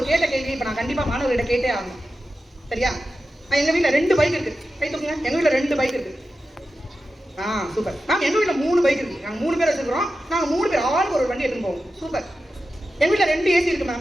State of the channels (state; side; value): normal; both; correlation 0.92